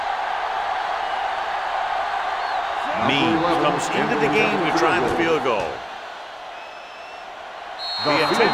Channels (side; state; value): both; identical; correlation 1.00